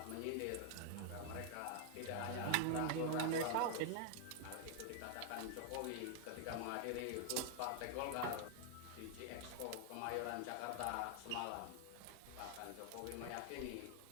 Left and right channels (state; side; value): different; both; correlation 0.00